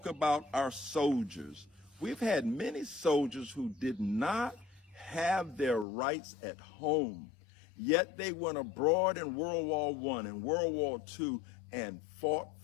about our soldiers. We've had many soldiers who did not have their rights at home, yet they went abroad in World War I and World War II and fought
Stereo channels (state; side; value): drops out; right; at 5.9 s